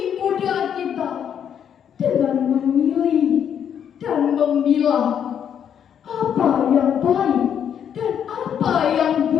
muda kita dengan memilih dan memilah apa yang baik dan apa yang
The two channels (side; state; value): right; quieter; 8.6 dB